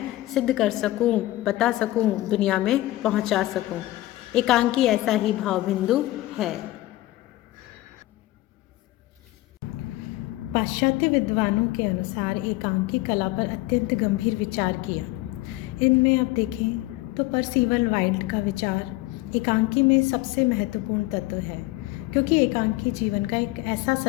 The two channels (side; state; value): right; quieter; 17.6 dB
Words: सिद्ध कर सकूं, बता सकूं, दुनिया में पहुंचा सकूं। एकांकी ऐसा ही भाव बिंदु है। पाश्चात्य विद्वानों के अनुसार एकांकी कला पर अत्यंत गंभीर विचार किया। इनमें आप देखें तो परसीवल वाइल्ड का विचार एकांकी में सबसे महत्वपूर्ण तत्व है, क्योंकि एकांकी जीवन का एक ऐसा